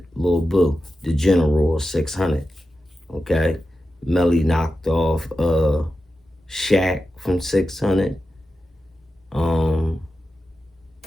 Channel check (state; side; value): normal; both; correlation 0.91